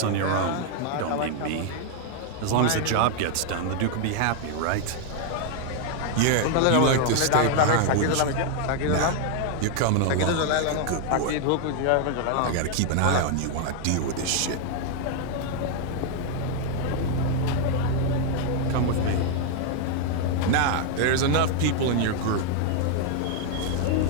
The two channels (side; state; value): both; different; correlation 0.00